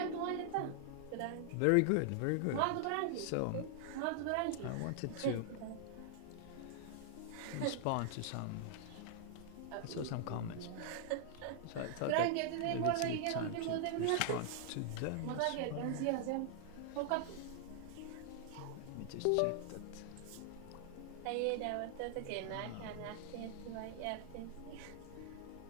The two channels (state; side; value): different; both; correlation 0.00